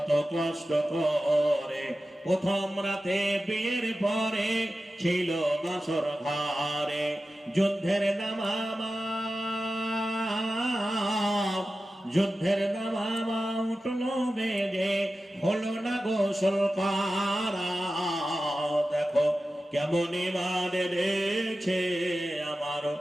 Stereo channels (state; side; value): normal; both; correlation 0.94